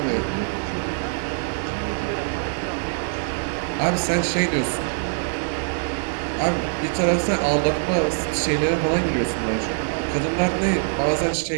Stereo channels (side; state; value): left; silent; digital silence